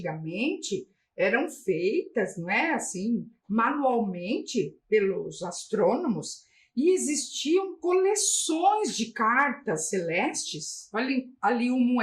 eram feitas, não é, assim, manualmente pelos astrônomos, e existiam coleções de cartas celestes. Olha ali um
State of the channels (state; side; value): identical; both; correlation 1.00